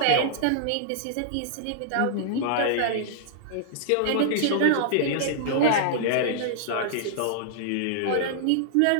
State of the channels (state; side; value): different; both; correlation -0.02